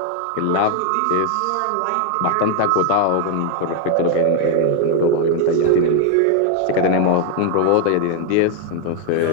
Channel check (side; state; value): both; different; correlation 0.00